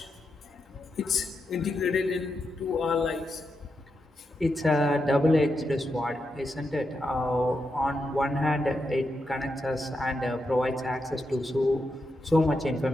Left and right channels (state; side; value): normal; both; correlation 0.85